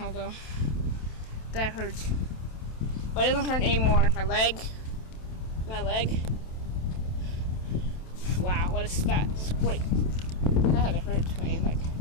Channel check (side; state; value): right; late; 27 ms